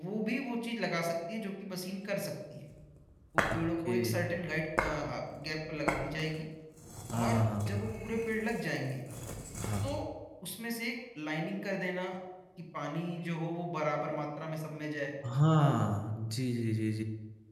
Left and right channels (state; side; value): identical; both; correlation 1.00